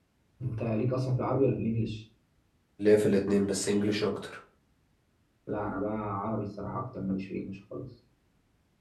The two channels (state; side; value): identical; both; correlation 1.00